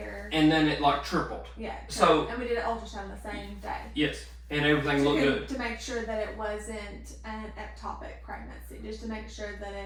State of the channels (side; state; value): both; identical; correlation 1.00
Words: And then it like tripled. Yeah. So and we did an ultrasound the same day. Yes, and everything looked good to make sure that it wasn't an ectopic pregnancy, just to make sure that